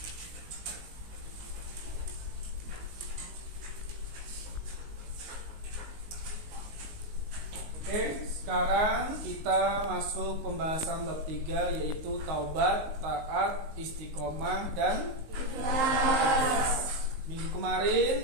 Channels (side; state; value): left; late; 19 ms